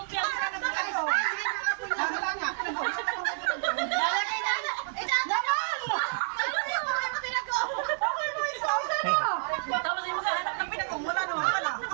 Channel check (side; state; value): left; silent; 58 dB below the other